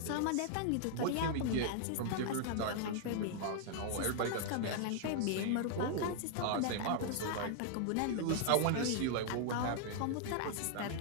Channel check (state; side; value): different; both; correlation 0.00